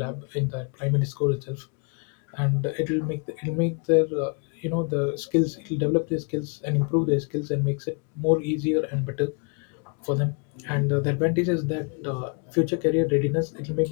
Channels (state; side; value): quieter; right; 36.9 dB